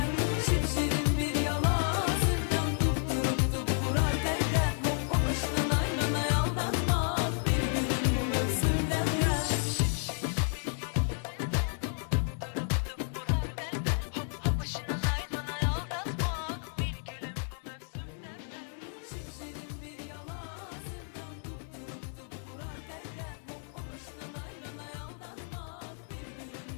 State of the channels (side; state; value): right; silent; 55 dB below the other